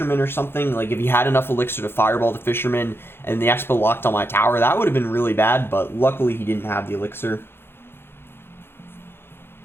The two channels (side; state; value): right; late; 0.11 ms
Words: or something, like if he had enough Elixir to Fireball the Fisherman and the Expo locked on my tower, that would have been really bad, but luckily he didn't have the Elixir.